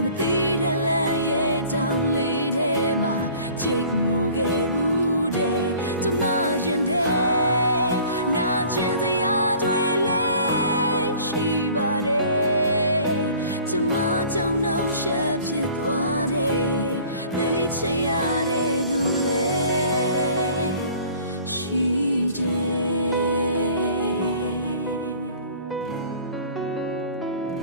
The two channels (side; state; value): both; inverted; correlation -0.49